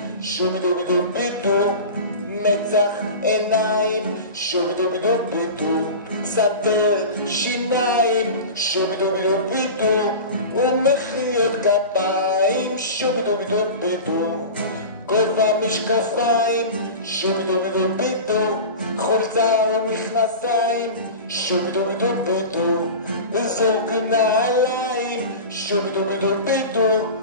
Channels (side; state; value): both; inverted; correlation -0.31